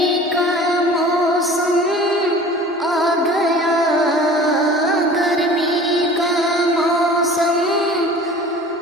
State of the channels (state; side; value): normal; both; correlation 0.44